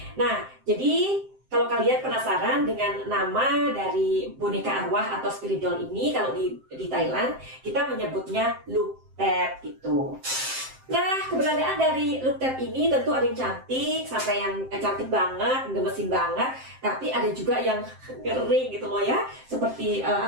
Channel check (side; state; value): left; late; 7.6 ms